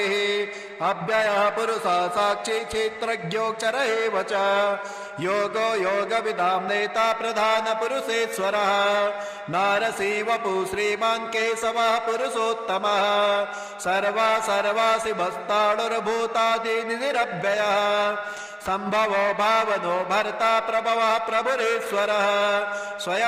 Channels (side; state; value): both; identical; correlation 1.00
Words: अव्ययः पुरुषः साक्षी क्षेत्रज्ञोऽक्षर एव च योगो योगविदां नेता प्रधानपुरुषेश्वरः नारसी वपु श्रीमान् केशवः पुरुषोत्तमः सर्वा सर्वासि भस्ताणुर्भूतादिनिरव्ययः संभवो भावनो भर्ता प्रभवः प्रभुरेश्वरः